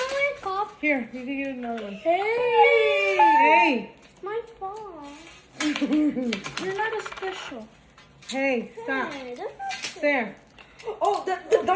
top. Here, you can get another one. Hey! Hey. Mine's fall. You're not a special. Hey, stop. Hey, this is There. Oh,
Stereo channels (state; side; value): identical; both; correlation 1.00